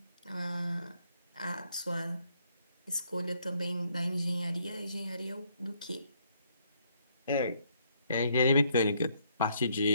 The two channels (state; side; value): inverted; both; correlation -0.70